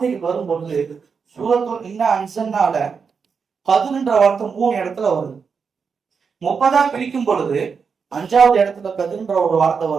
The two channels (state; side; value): quieter; left; 5.7 dB